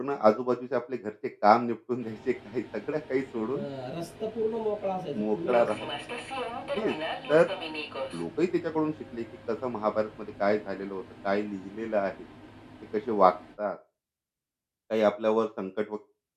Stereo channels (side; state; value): both; identical; correlation 1.00